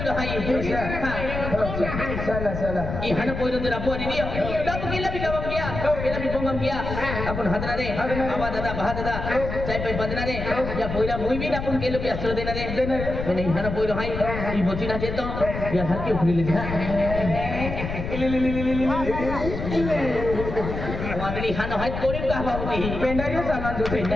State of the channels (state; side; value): noise; left; rumble, 5 dB below the sound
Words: hai चला चला i hana poilo dara po ni dia dapat kila bi gawam dia kila bi pongam dia apun hadra de aba dada bah dada cai pai badna de ya poila mui bi apun kilo bi asro dena de नहीं hana poilo hai i bocina cheto ya halki ukhli le dia wagri hana hai korim ka babuti पेंडारियो सामान जो